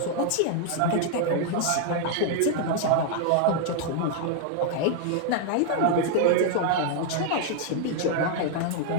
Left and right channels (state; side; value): different; both; correlation 0.00